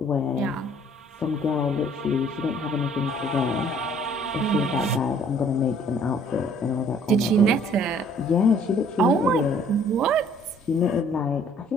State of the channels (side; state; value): both; normal; correlation 0.58